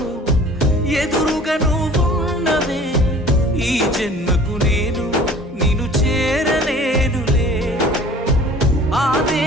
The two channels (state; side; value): normal; both; correlation 0.48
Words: ఎదురుగా నువ్వున్నవే, ఈ జన్మకు నేను నిన్ను చేరలేనులే. ఆ